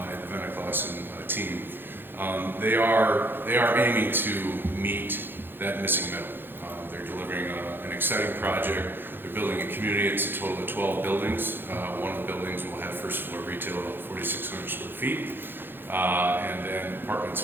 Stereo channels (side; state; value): left; late; 0.10 ms